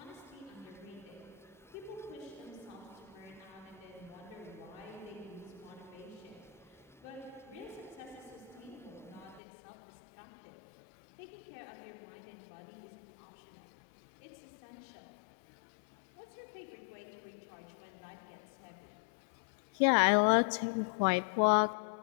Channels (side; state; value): right; drops out; at 9.4 s